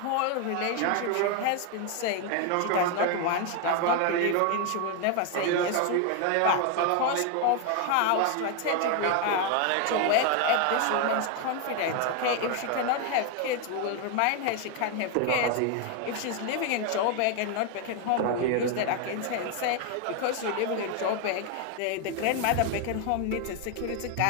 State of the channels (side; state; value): both; different; correlation 0.01